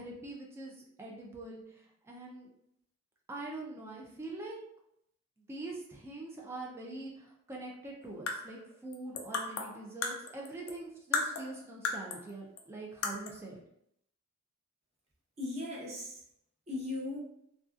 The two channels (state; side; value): normal; both; correlation 0.31